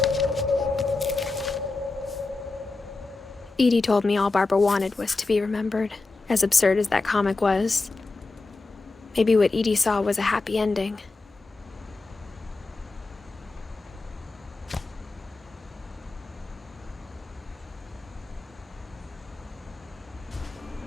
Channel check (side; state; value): right; quieter; 3.5 dB